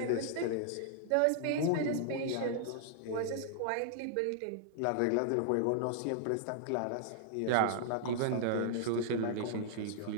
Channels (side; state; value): both; different; correlation -0.01